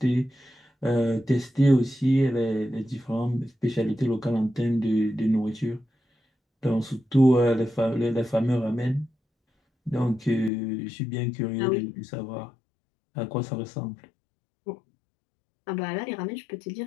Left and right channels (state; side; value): drops out; right; at 10.5 s